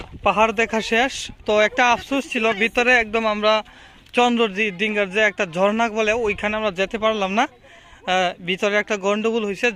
পাহাড় দেখা শেষ। তো একটা আফসোস ছিল, ভিতরে একদম আমরা চন্দ্রডিঙ্গার যে একটা ঝর্ণা বলে ওইখানে আমরা যেতে পারলাম না। ভিতরে একটা গন্ডগোল হয়েছে,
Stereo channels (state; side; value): identical; both; correlation 1.00